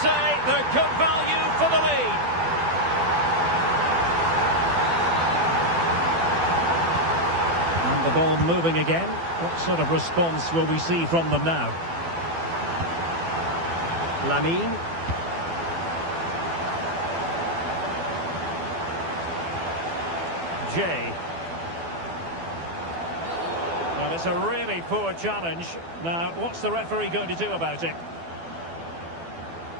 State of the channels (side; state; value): left; late; 12 ms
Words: they're good value for the lead. And the ball moving again. What sort of response will we see from them now? Lamine. Jay. Well, it's a really poor challenge. Now, what's the referee going to do about it?